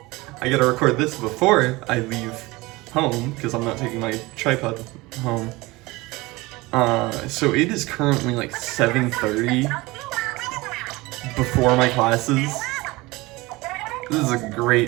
I gotta record this before I leave home, because I'm not taking my tripod home. So it is currently like 7:30 before my classes. This is a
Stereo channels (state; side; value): quieter; left; 21.8 dB